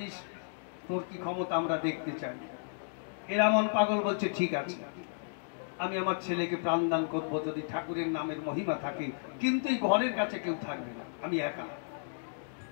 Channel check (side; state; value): right; silent; digital silence